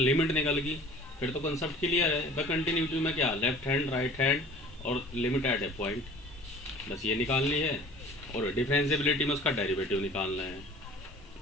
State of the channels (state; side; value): normal; both; correlation 0.46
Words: निकल गई फिर तो कंसेप्ट क्लियर है। ब कंटिन्यूटी में क्या, लेफ्ट हैंड राइट हैंड और लिमिट एट ए पॉइंट, बस ये निकालनी है। और डिफरेंशिएबिलिटी में उसका डेरिवेटिव निकालना है।